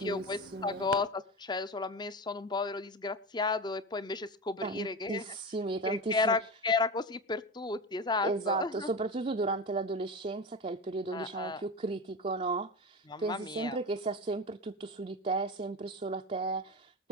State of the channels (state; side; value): normal; both; correlation 0.24